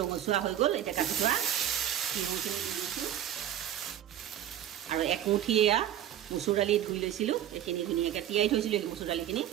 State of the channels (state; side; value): quieter; left; 11.4 dB